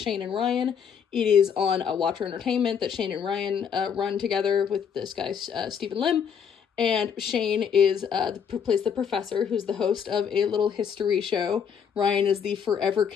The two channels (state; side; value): quieter; right; 7.4 dB